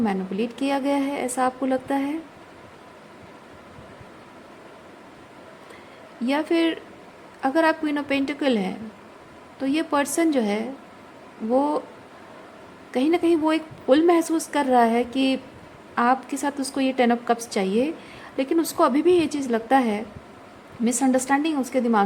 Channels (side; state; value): both; identical; correlation 1.00